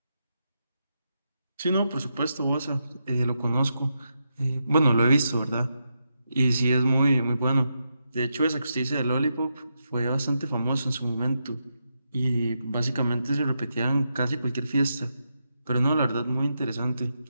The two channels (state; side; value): inverted; both; correlation -0.84